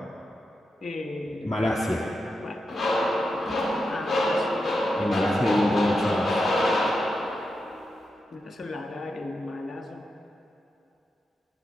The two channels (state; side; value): normal; both; correlation 0.87